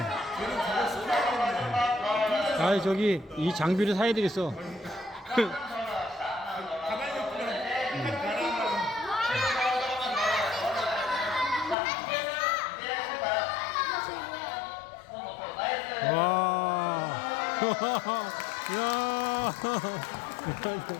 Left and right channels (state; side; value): drops out; right; at 11.8 s